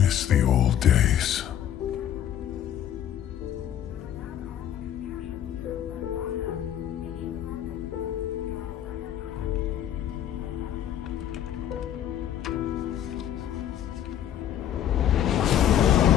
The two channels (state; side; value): quieter; right; 10.6 dB